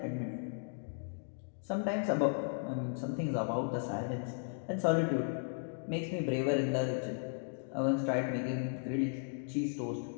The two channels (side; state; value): right; silent; digital silence